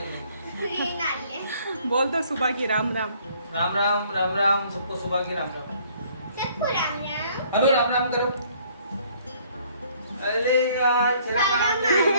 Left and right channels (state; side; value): inverted; both; correlation -0.61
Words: बोल दो सुबह की राम राम। राम राम राम राम सबको सुबह की राम राम। सबको राम राम। अरे राम राम करो। अरे यार तेरा काम